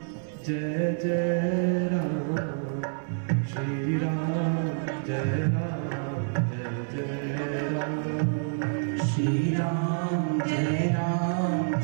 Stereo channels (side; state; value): left; silent; 59 dB below the other